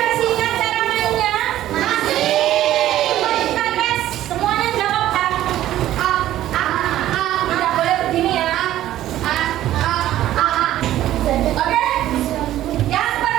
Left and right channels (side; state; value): left; quieter; 13.4 dB